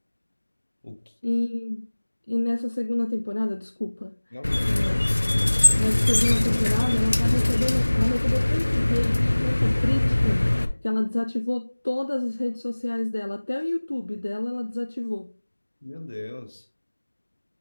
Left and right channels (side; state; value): both; inverted; correlation -1.00